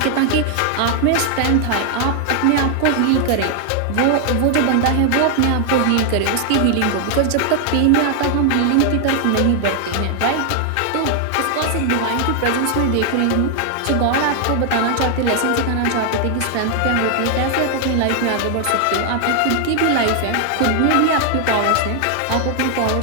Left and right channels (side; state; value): both; different; correlation 0.00